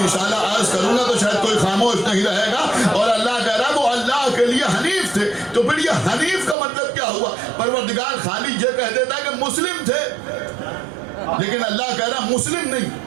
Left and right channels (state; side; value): drops out; left; at 6.6 s